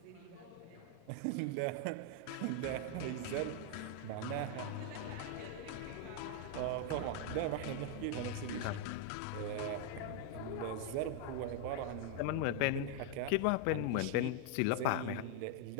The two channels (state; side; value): different; both; correlation 0.00